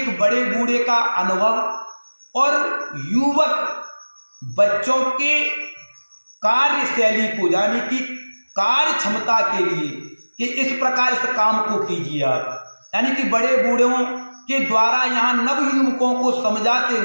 एक बड़े बूढ़े का अनुभव और युवक बच्चों के कार्यशैली को यानी कि कार्य क्षमता के लिए कि इस प्रकार इस काम को कीजिए आप। यानी कि बड़े बूढ़ों के द्वारा यहाँ नवयुवकों को समझाते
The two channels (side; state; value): both; inverted; correlation -1.00